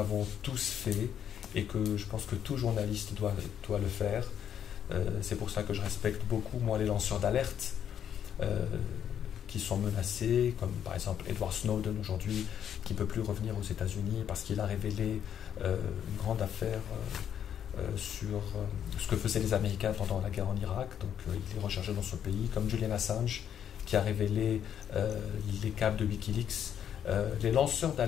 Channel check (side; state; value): right; quieter; 9.2 dB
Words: tous fait et que je pense que tout journaliste doit le faire. C'est pour ça que je respecte beaucoup, moi, les lanceurs d'alerte qui sont menacés, comme par exemple Edward Snowden aujourd'hui, qui ne peut plus revenir aux États-Unis parce qu'il a révélé une grande affaire sur ce que faisaient les Américains pendant la guerre en Irak. Donc il est recherché dans ce pays, comme Julian Assange, qui a révélé les câbles de Wikileaks. Les lanceurs